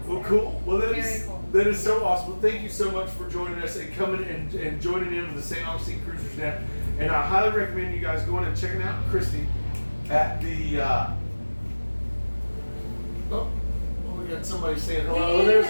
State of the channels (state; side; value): inverted; both; correlation -1.00